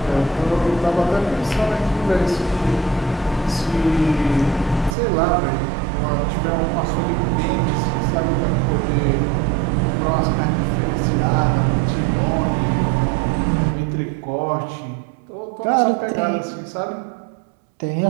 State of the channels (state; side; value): drops out; left; at 5.0 s